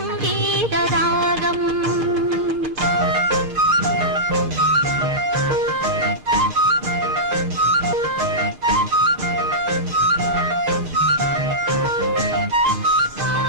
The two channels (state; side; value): late; left; 2.5 ms